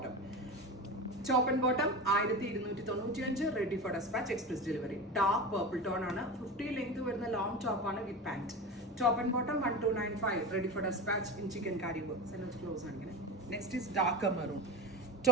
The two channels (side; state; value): both; normal; correlation 0.25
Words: Top and bottom 1295, ready for dispatch, express delivery. Dark purple tone ആണ്, 50 length വരുന്ന long top ആണ് with pant. Top and bottom 1295, ready for dispatch in chikankari work. Close ആണ് ഇങ്ങനെ. Next is dark maroon.